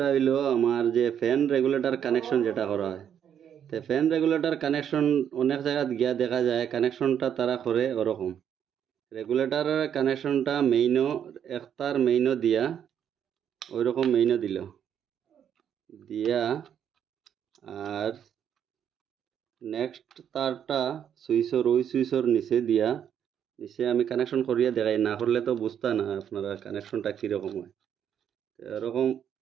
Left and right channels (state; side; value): quieter; left; 9.0 dB